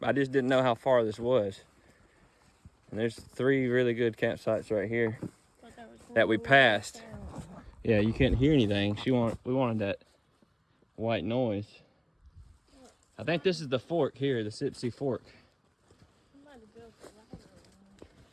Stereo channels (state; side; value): identical; both; correlation 1.00